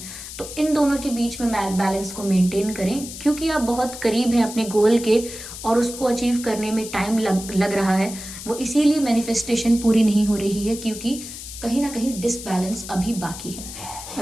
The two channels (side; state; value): left; noise; hiss, 11 dB below the sound